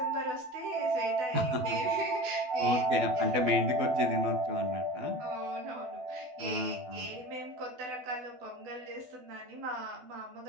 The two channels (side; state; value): left; late; 12 ms